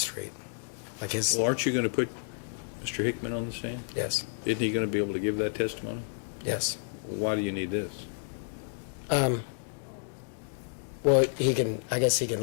Like his, Well, aren't you going to put Mr. Hickman on the stand? yes, Isn't he going to be able to give that testimony? yes. Why do you need this? Well, I guess he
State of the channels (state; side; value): silent; right; digital silence